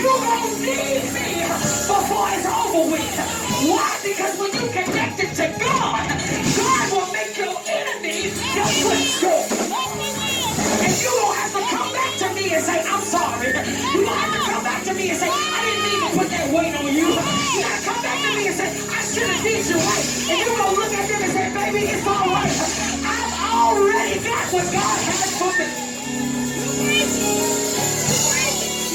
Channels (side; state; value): both; identical; correlation 1.00